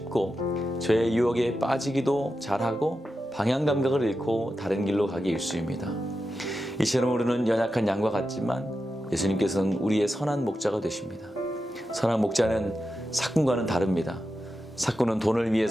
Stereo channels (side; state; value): both; normal; correlation 0.90